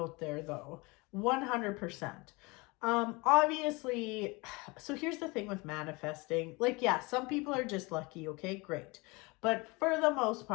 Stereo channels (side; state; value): right; quieter; 25.7 dB